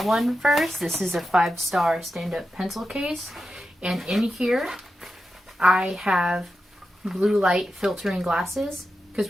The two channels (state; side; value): normal; both; correlation 0.90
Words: first. This is a 5-star stand-up pencil case. And in here, I have blue light filtering glasses.